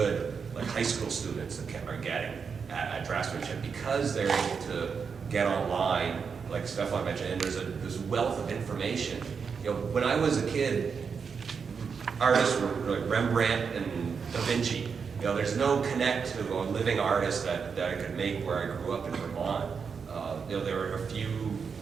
like high school students are getting at draftsmanship, because they're able to get online, like Stefan mentioned, and there's this wealth of information. You know, when I was a kid, artists were like Rembrandt and Da Vinci. You know, there's no connect to a living artist that I could make where I grew up in Vermont. You know, there were a few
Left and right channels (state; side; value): quieter; left; 5.9 dB